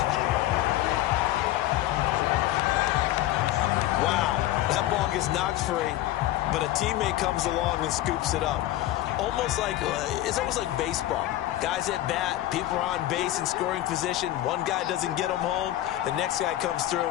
Wow, that ball gets knocked free, but a teammate comes along and scoops it up. It's almost like baseball. Guys at bat, people are on base in scoring position. One guy doesn't get him home. The next guy comes through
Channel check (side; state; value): right; quieter; 14.6 dB